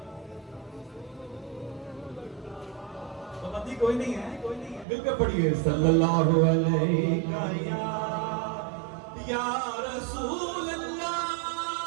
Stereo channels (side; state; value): left; drops out; at 4.9 s